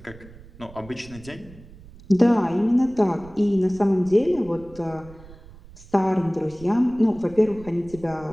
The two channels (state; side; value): noise; right; rumble, 20 dB below the sound